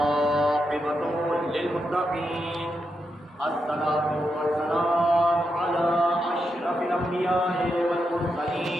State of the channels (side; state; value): both; normal; correlation 0.84